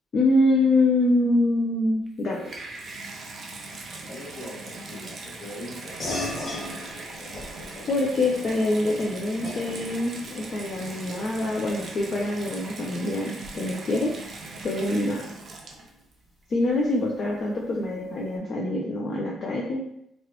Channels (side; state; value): both; normal; correlation 0.73